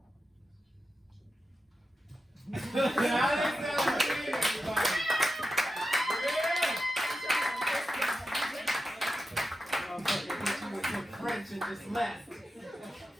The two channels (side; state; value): both; normal; correlation 0.90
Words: French and just left.